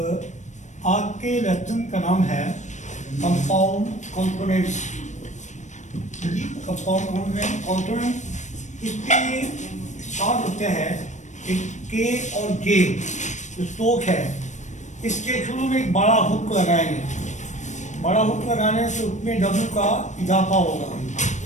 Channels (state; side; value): late; right; 0.35 ms